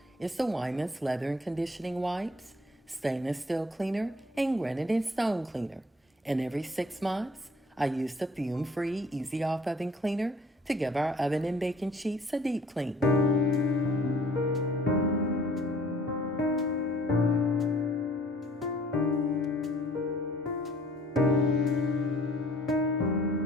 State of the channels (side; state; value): both; normal; correlation 0.56